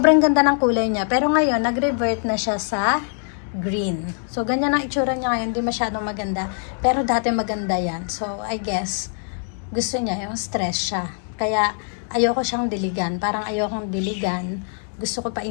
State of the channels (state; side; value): silent; right; 60 dB below the other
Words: ganda ng kulay niya. Pero ngayon, nag-revert na siya sa green. So, ganyan ang itsura niya ngayon. Hindi masyadong maganda. Pero dati maganda yan. So, I guess, gusto niya yung stress siya. Kaya, ayoko siyang diligan. Parang ayokong diligan. Gusto ko